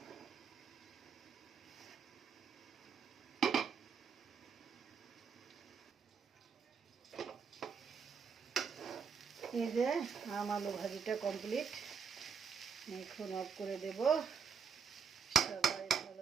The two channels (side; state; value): left; quieter; 6.3 dB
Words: এই যে আম আলু ভাজিটা কমপ্লিট, এখন অফ করে দেব। সবাই